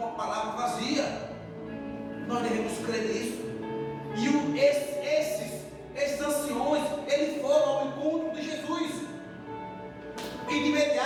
a palavra vazia. Nós devemos crer nisso. E esses anciões, eles foram ao encontro de Jesus, e de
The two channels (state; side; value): identical; both; correlation 1.00